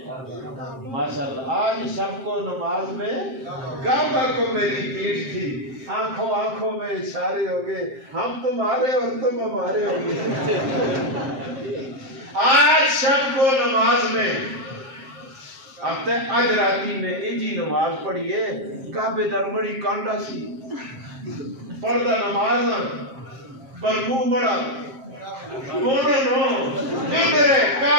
ماشاءاللہ آج شب کو نماز میں کعبہ کو میری پیٹھ تھی آنکھوں آنکھوں میں اشارے ہو گئے ہم تمہارے اور تم ہمارے ہو گئے آج شب کو نماز میں اب تے آج راتی میں ایجی نماز پڑھیے کعبے در بڑی کانڈا سی پردہ نماز پر منہ بڑا نو میرے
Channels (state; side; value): late; left; 7.6 ms